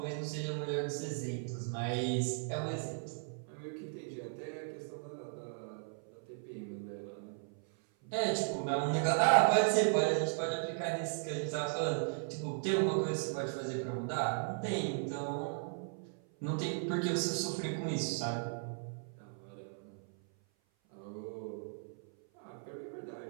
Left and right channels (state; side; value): silent; left; 53 dB below the other